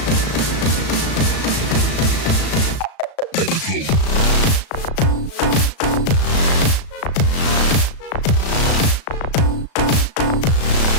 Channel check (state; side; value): late; right; 36 ms